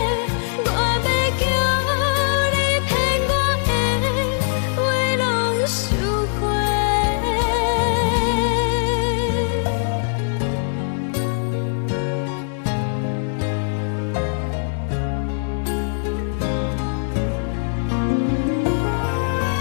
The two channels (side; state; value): right; silent; 65 dB below the other